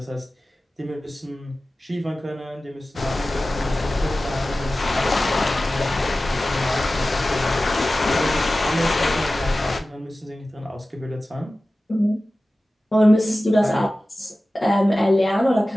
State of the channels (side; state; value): both; normal; correlation 0.96